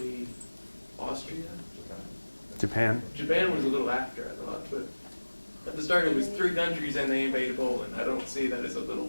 Austria, Japan. Japan was a little after, I thought, but at the start it was 3 countries and they invaded Poland. I don't see that as a little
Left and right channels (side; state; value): both; inverted; correlation -1.00